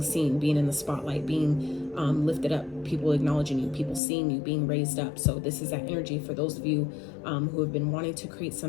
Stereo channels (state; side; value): drops out; right; at 4.0 s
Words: seen, being in the spotlight, being lifted up, people acknowledging you, people seeing you, being raised up. So this is that energy for those of you who have been wanting to create